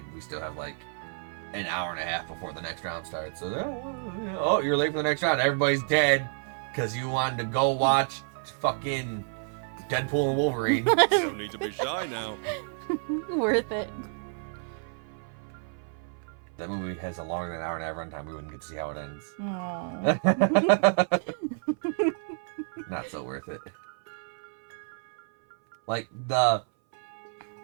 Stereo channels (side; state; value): left; silent; 58 dB below the other